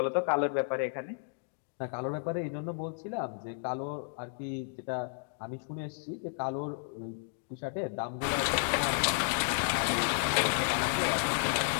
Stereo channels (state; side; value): silent; right; digital silence